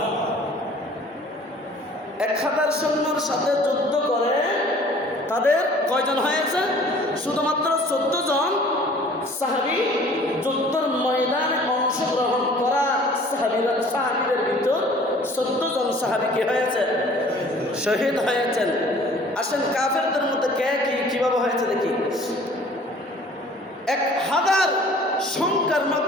1000 সৈন্যর সাথে যুদ্ধ করে তাদের কয়জন হয়েছে? শুধুমাত্র 14 জন সাহাবী। যুদ্ধের ময়দানে অংশগ্রহণ করা সাহাবীদের ভিতর 14 জন সাহাবী কি হয়েছে? শহীদ হয়েছেন। আসেন কাফেরদের মধ্যে কে কিভাবে হয়েছে দেখি। 1000 সংখ্যার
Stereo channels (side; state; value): both; normal; correlation 0.51